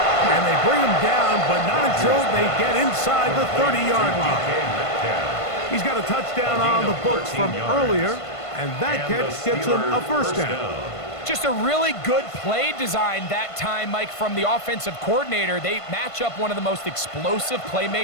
And they bring him down, but not until they get inside the 30-yard line. He's got a touchdown on the books from earlier, and that catch gets him a first down. Just a really good play design that time, Mike, from the offensive coordinator. They match up one of the most explosive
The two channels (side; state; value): right; late; 1.5 ms